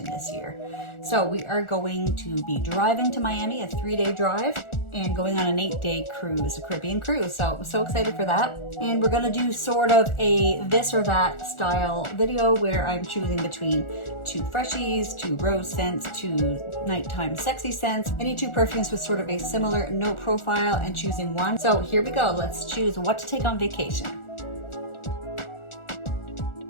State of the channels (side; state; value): right; late; 1.4 ms